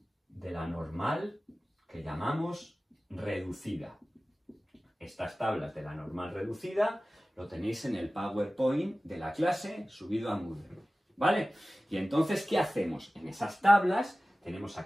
de la normal que llamamos reducida. Estas tablas de la normal reducida lo tenéis en el PowerPoint de la clase subido a Moodle, ¿vale? Y entonces, ¿qué hacemos? En esas tablas tenemos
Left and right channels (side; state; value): both; normal; correlation 0.97